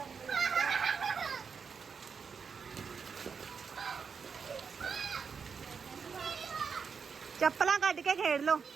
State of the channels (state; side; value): quieter; left; 5.9 dB